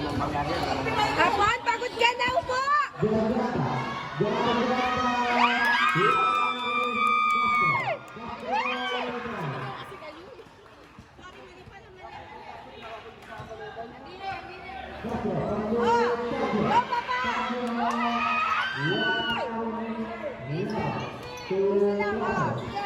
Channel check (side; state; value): both; identical; correlation 1.00